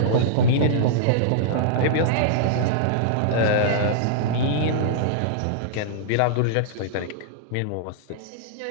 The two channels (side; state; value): both; different; correlation -0.02